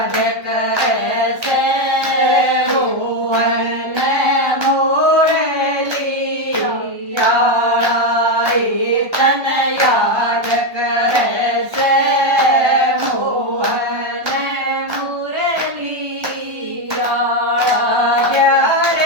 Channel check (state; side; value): late; left; 1.2 ms